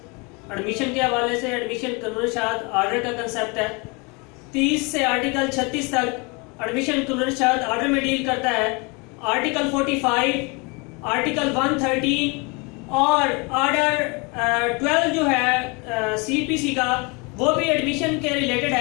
एडमिशन के हवाले से। एडमिशन कानून शाद आर्डर का कंसेप्ट है। 30 से आर्टिकल 36 तक एडमिशन कानून शाद आर्डर में डील करता है। आर्टिकल 45, आर्टिकल 113 और आर्डर 12 जो है CPC का, वो भी एडमिशन के रिलेटेड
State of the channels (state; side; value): quieter; right; 29.6 dB